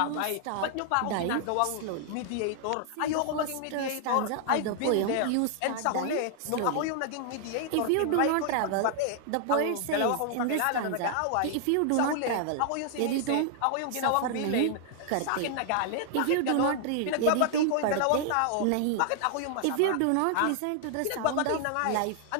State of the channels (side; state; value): both; different; correlation 0.00